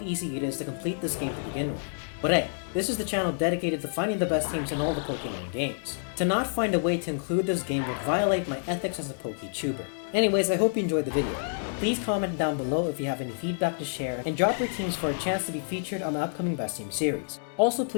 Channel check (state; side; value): silent; right; digital silence